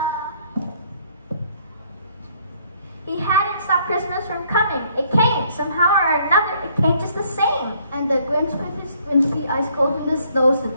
He hadn't stopped Christmas from coming. It came, somehow or another, it came just the same. And the Grinch with his squinty eyes cold in the snow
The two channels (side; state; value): both; inverted; correlation -0.64